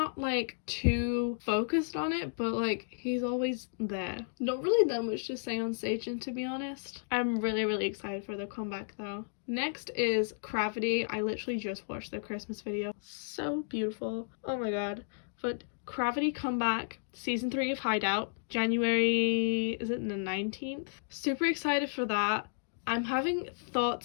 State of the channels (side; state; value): right; silent; digital silence